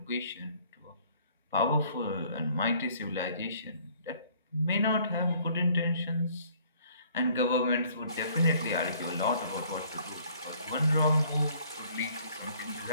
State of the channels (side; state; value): both; inverted; correlation -0.59